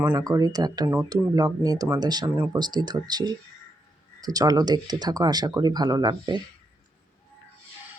করি। তো একটা নতুন ব্লগ নিয়ে তোমাদের সামনে উপস্থিত হচ্ছি। তো চলো দেখতে থাকো, আশা করি ভালো লাগবে।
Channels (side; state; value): both; normal; correlation 0.81